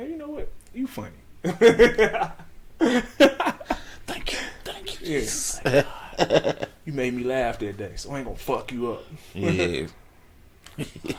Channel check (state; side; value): identical; both; correlation 1.00